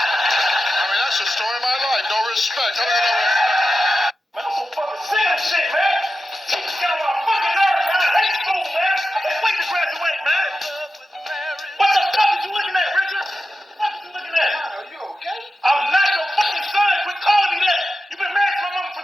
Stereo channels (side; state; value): both; normal; correlation 0.91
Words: mean, that's the story of my life. No respect. How do you know respect? Man, I'm so fucking sick of this shit, man. Teachers get on my fucking nerves, man. I hate school, man. I can't wait to graduate, man. What the fuck is you looking at, Richard? What is you looking at? Are you okay? I'm not your fucking son. Quit calling me that. You been married to my mama